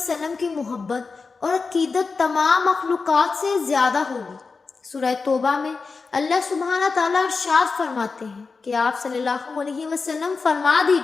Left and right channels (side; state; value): right; quieter; 4.5 dB